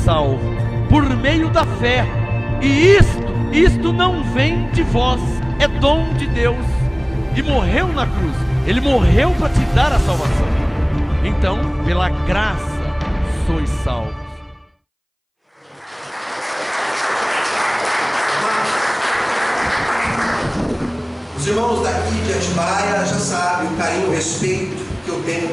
por meio da fé, e isto não vem de vós, é dom de Deus. E morreu na cruz, Ele morreu para te dar a salvação. Então, pela graça sois salvos. Os irmãos daqui de Atibaia já sabem o carinho e o respeito que eu tenho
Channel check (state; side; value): identical; both; correlation 1.00